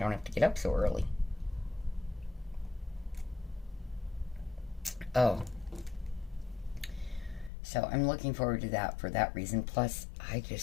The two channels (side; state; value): right; drops out; at 7.5 s